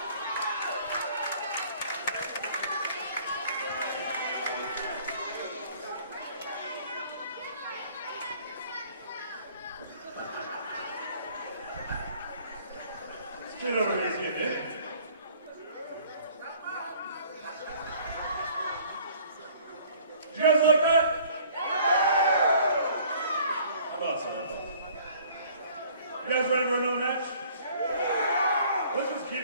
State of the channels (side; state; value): both; inverted; correlation -0.54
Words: Get over here, kid, eh? You guys like that? I thought so. You guys ready for another match? Let's just keep